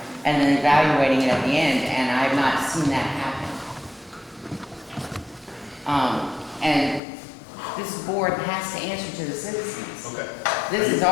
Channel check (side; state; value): right; drops out; at 7.0 s